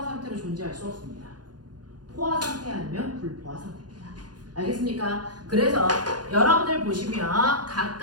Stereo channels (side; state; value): left; late; 0.69 ms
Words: 상태로 존재할 수 없습니다. 포화 상태 아니면 불포화 상태입니다. 알겠습니까? 그래서 여러분들 보시면